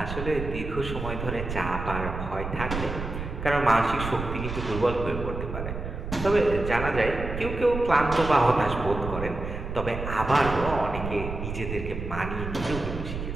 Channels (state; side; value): noise; right; rumble, 6 dB below the sound